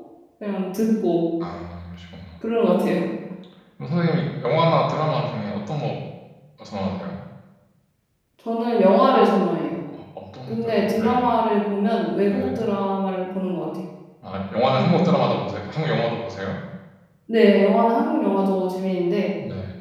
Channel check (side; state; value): both; identical; correlation 1.00